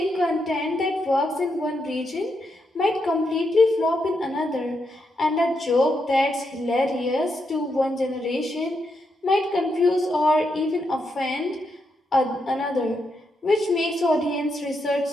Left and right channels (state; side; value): normal; both; correlation 0.82